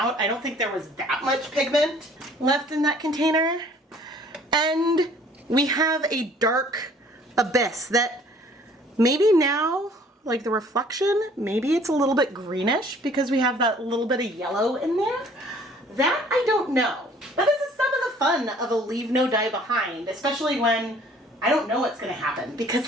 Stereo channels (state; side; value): normal; both; correlation 0.55